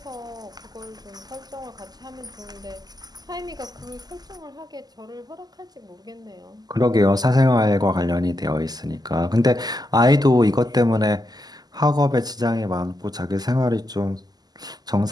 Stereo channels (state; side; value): late; left; 0.20 ms